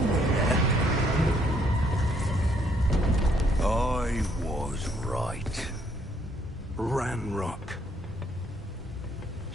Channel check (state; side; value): normal; both; correlation 0.68